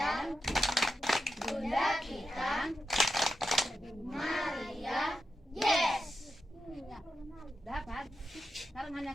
Bunda kita, Maria. Yes. Dapat. Sekarang hanya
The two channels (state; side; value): normal; both; correlation 0.89